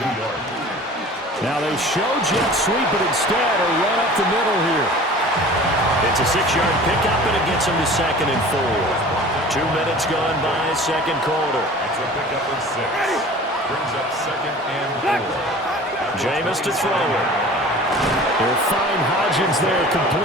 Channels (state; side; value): normal; both; correlation 0.43